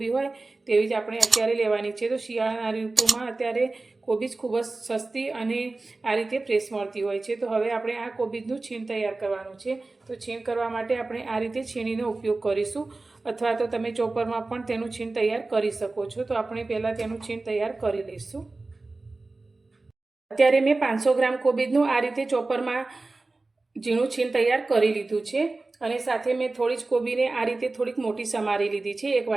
હોય તેવી જ આપણે અત્યારે લેવાની છે। તો શિયાળાના ઋતુમાં અત્યારે કોબીજ ખૂબ જ સસ્તી અને આ રીતે ફ્રેશ મળતી હોય છે। તો હવે આપણે આ કોબીજનું છીણ તૈયાર કરવાનું છે। તો છીણ કરવા માટે આપણે આ રીતે છીણીનો ઉપયોગ કરીશું, અથવા તો તમે ચોપરમાં પણ તેનું છીણ તૈયાર કરી શકો છો। તો આપણે પહેલાં તેનું છીણ તૈયાર કરી લઈશું। અત્યારે મેં 500 ગ્રામ કોબીજનું આ રીતે ચોપરમાં ઝીણું છીણ તૈયાર કરી લીધું છે, અને સાથે મેં થોડી જ કોબીને આ રીતે થોડીક મોટી સમારી લીધી છે, 1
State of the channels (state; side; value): quieter; left; 3.4 dB